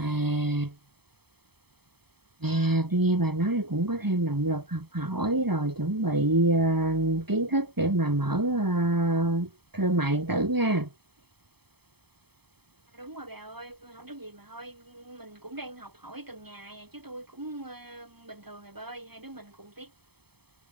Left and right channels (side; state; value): left; late; 0.97 ms